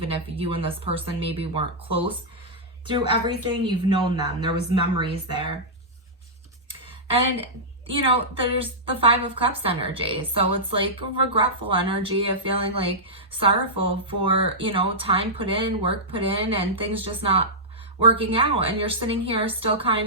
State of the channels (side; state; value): both; normal; correlation -0.11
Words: if you and this person maybe weren't close through everything, you've known them. There was memories there. And you know, there's the Five of Cups energy. So it's like a regretful energy of feeling like sorrowful for, you know, time put in, work put in, and things just not working out. And you're sitting here still